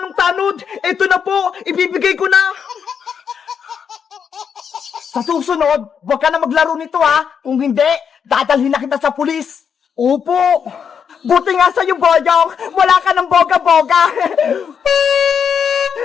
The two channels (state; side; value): quieter; right; 7.1 dB